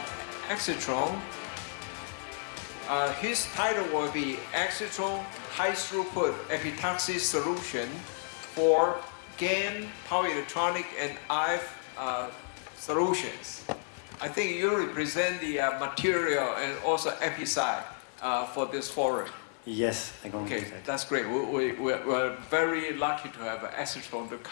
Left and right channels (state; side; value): silent; right; 57 dB below the other